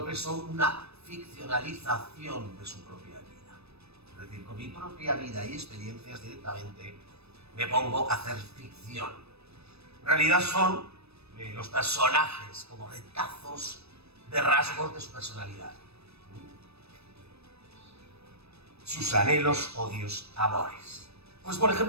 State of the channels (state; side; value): late; left; 0.78 ms